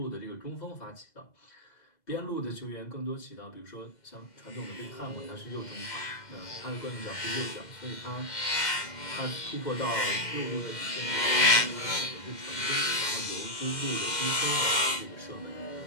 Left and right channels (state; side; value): late; right; 2.1 ms